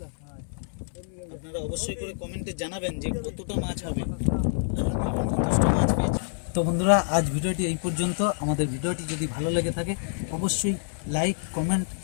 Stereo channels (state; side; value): silent; right; 60 dB below the other